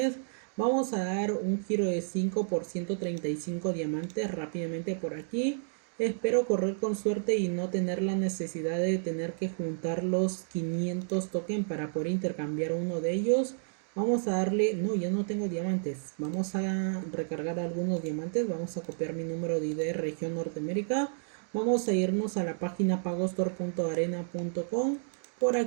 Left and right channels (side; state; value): left; silent; digital silence